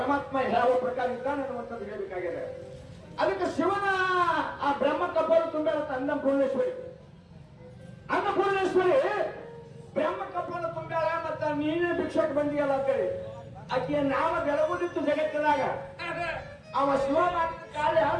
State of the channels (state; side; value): identical; both; correlation 1.00